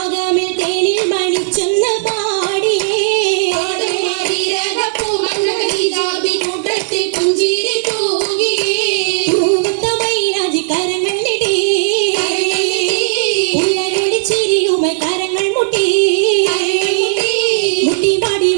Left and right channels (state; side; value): silent; left; digital silence